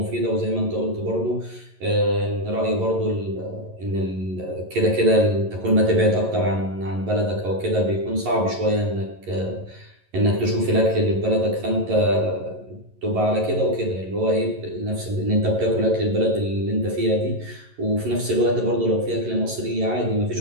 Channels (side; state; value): left; late; 11 ms